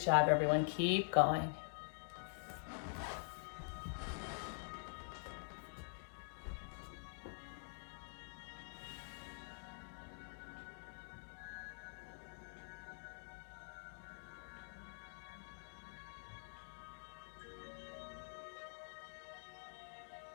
everyone. Keep going.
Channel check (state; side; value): silent; right; digital silence